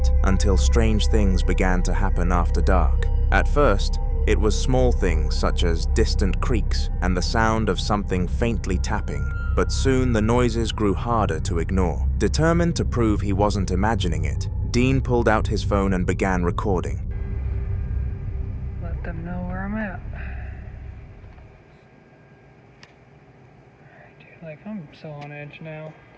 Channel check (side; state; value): both; identical; correlation 1.00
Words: until strange things began to happen after dark. At first, it was small things such as distant creaks and the sound of something faintly tapping, but soon the noises grew harder to ignore. Determined to prove he wasn't imagining it, Dean pulled out his phone and began recording. Let them know where I'm at. Dude, like, I'm so on edge now.